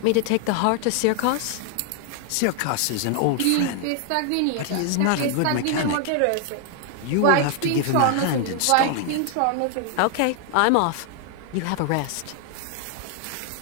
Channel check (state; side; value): different; both; correlation 0.00